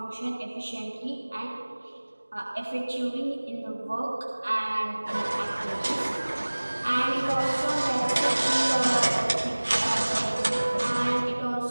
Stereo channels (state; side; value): inverted; both; correlation -1.00